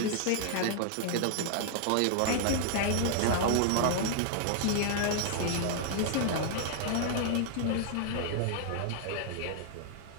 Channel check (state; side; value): different; both; correlation 0.00